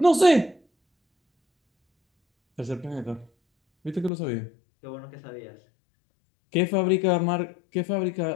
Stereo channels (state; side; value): drops out; right; at 4.1 s